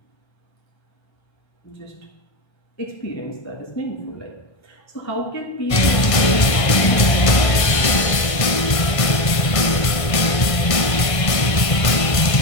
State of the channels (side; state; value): right; late; 1.5 ms